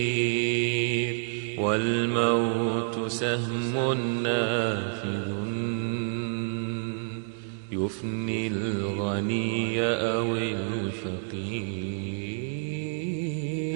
والموت سهم نافذ يفني الغني أو الفقير.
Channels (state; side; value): silent; left; digital silence